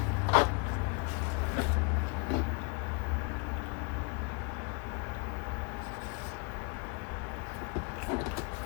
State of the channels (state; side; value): quieter; right; 33.1 dB